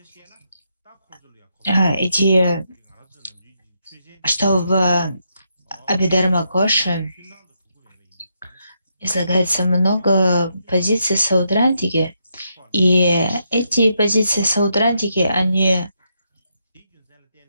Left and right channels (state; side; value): inverted; both; correlation -0.80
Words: в Абидарма Коше излагается много позиций Саудрандиги, и эти позиции Саудрандиги, они